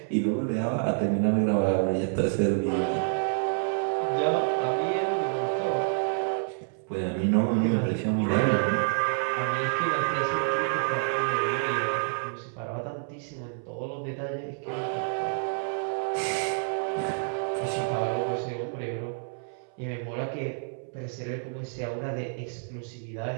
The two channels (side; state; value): left; silent; 59 dB below the other